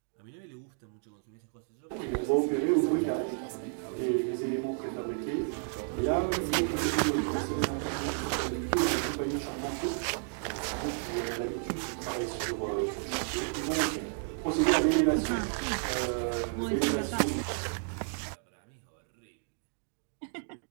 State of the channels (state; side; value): silent; left; 56 dB below the other